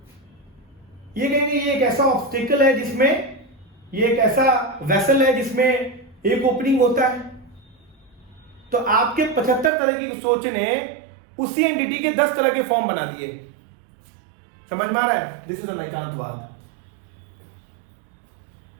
ये कहेंगे ये एक ऐसा ऑब्स्टिकल है जिसमें, ये एक ऐसा वेसल है जिसमें एक ओपनिंग होता है। तो आपके 75 तरह की सोच ने उसी एंटिटी के 10 तरह के फॉर्म बना दिए। समझ में आ रहा है? This is Anekantavada.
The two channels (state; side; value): drops out; left; at 9.7 s